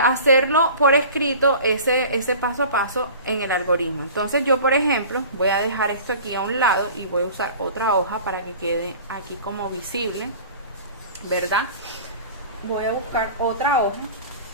hacerlo por escrito, ese paso a paso en el algoritmo. Entonces yo, por ejemplo, voy a dejar esto aquí a un lado y voy a usar otra hoja para que quede aquí como visible, ¿verdad? Voy a buscar otra hoja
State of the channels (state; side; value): inverted; both; correlation -0.41